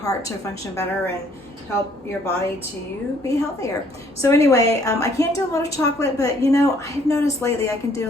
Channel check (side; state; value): both; normal; correlation 0.63